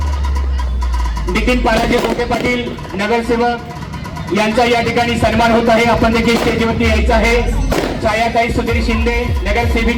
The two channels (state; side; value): identical; both; correlation 1.00